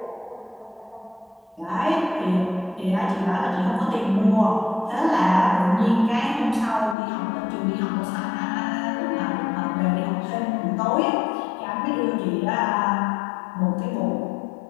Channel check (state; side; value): drops out; right; at 7.0 s